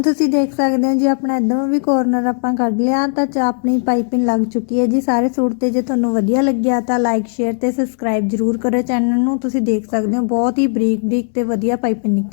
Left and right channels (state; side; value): silent; right; digital silence